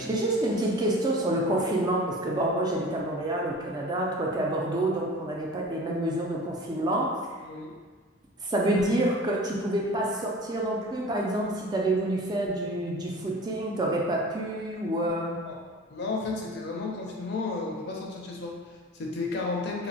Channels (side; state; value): both; normal; correlation 0.40